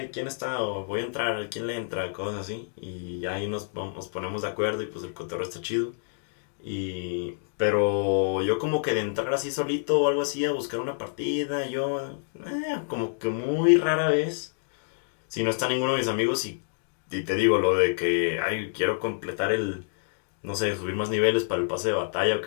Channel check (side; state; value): right; silent; digital silence